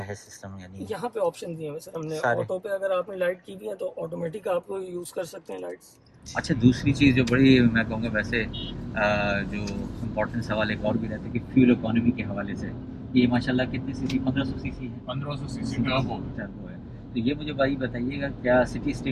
सिस्टम, यानी यहाँ पे ऑप्शन दिए हुए सर हमने। सारे। ऑटो पे अगर आपने लाइट की भी है तो ऑटोमेटिक आप यूज़ कर सकते हैं लाइट्स। अच्छा, दूसरी चीज़ जो बड़ी मैं कहूँगा वैसे जो इम्पोर्टेंट सवाल एक और भी रहता है कि फ्यूल इकोनॉमी के हवाले से, ये माशाल्लाह कितनी सीसी, 1500 सीसी है, 1500 सीसी टर्बो। टर्बो है। तो ये मुझे भाई बताइएगा, क्या सिटी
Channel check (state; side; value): identical; both; correlation 1.00